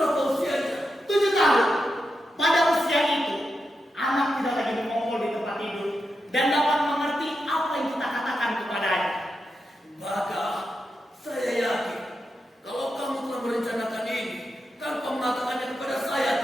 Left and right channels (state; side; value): normal; both; correlation 0.87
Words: usianya? 7 tahun. Pada usia itu, anak tidak lagi mengongkol di tempat tidur dan dapat mengerti apa yang kita katakan kepadanya. Baga, saya yakin kalau kamu telah merencanakan ini tanpa mengatakannya kepada saya,